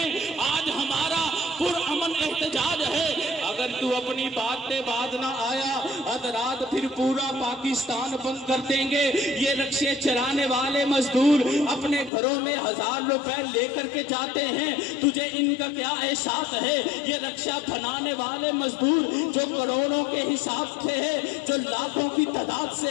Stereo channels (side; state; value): right; drops out; at 12.1 s